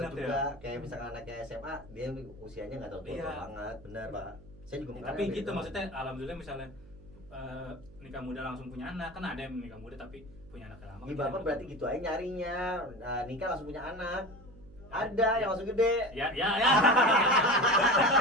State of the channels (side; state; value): right; noise; hum, 21 dB below the sound